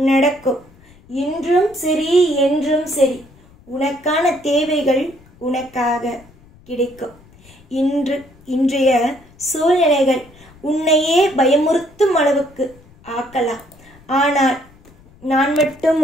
இன்றும் சரி என்றும் சரி உனக்கான தேவைகள் உனக்காக கிடைக்கும். இன்றைய சூழ்நிலைகள் உன்னையே பயமுறுத்தும் அளவுக்கு ஆக்கலாம். ஆனால் நான் மட்டும்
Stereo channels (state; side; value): noise; left; rumble, 26 dB below the sound